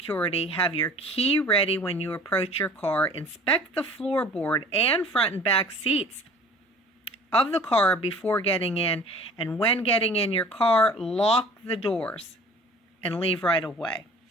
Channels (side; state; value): both; normal; correlation 0.46